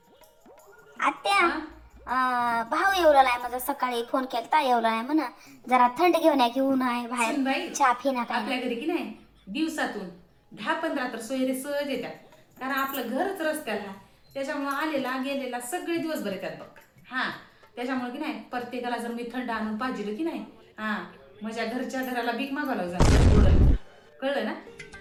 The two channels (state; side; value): identical; both; correlation 1.00